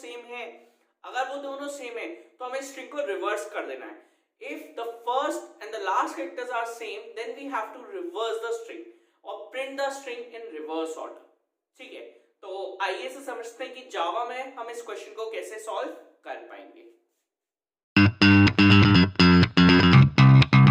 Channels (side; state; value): both; identical; correlation 1.00